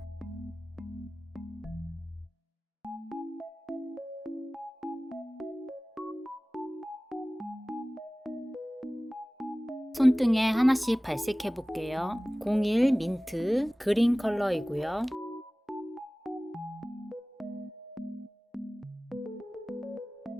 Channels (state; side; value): normal; both; correlation 0.98